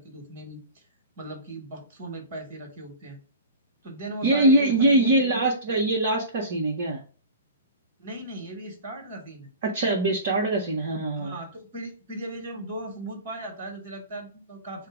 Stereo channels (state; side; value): inverted; both; correlation -0.36